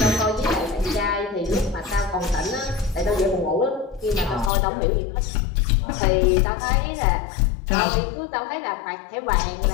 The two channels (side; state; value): right; drops out; at 4.5 s